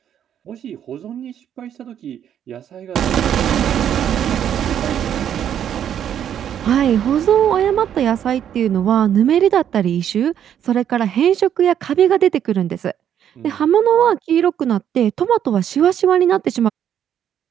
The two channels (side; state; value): left; quieter; 9.6 dB